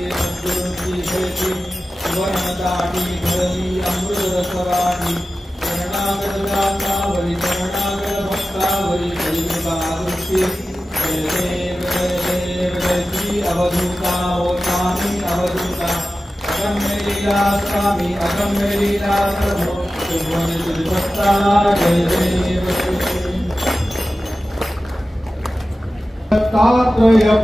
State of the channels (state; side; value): normal; both; correlation 0.94